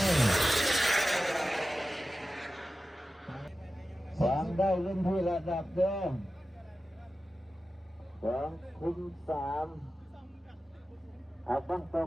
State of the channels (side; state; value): both; normal; correlation 0.94